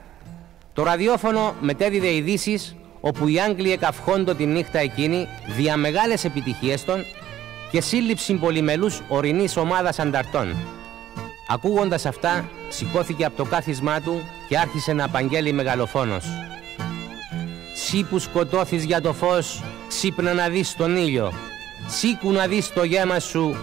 Το ραδιόφωνο μετέδιδε ειδήσεις όπου οι Άγγλοι εκαυχόντο τη νύχτα εκείνη δια μεγάλες επιτυχίες των και σύλληψη πολυμελούς ορεινής ομάδας ανταρτών. Ακούγοντας αυτά, σηκώθηκε από το κάθισμά του και άρχισε να απαγγέλει μεγαλοφόνος: «Σύ που σκοτώθεις για το φως, ξύπνα να δεις τον ήλιο. Σήκου να δεις το γέμα σου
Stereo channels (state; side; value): quieter; left; 12.5 dB